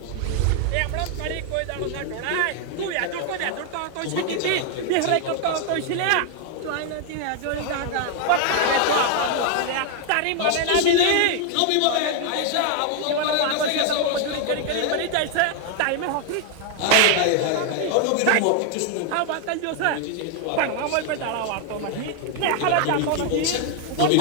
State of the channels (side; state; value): both; different; correlation 0.00